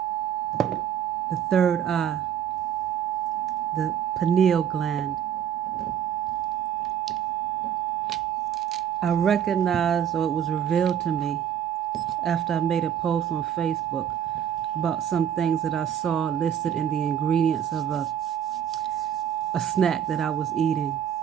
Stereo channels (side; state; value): left; quieter; 9.3 dB